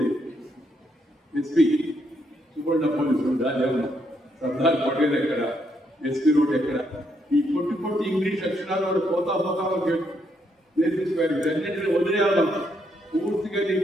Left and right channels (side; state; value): both; normal; correlation 0.76